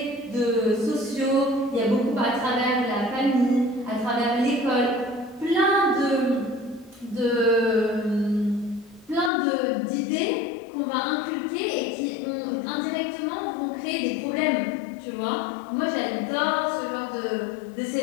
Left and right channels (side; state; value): right; drops out; at 9.3 s